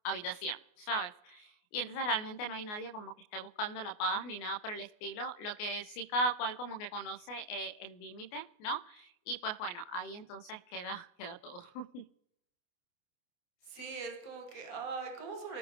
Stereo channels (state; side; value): late; right; 28 ms